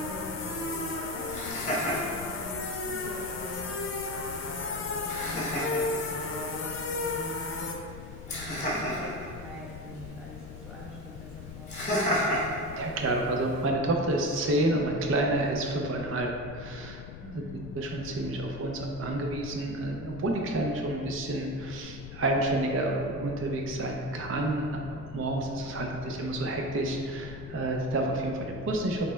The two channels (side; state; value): left; noise; rumble, 11 dB below the sound